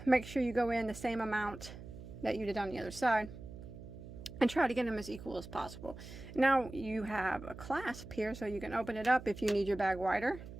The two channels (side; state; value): right; noise; hum, 13 dB below the sound